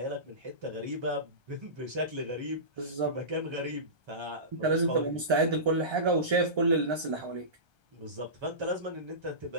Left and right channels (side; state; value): left; late; 1.3 ms